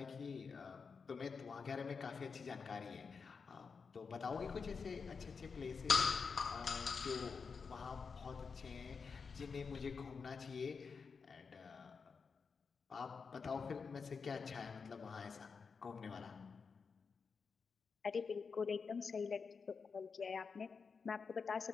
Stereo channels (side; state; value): right; quieter; 5.3 dB